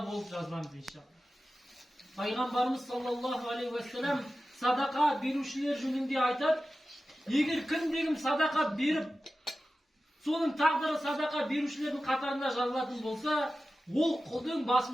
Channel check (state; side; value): normal; both; correlation 0.94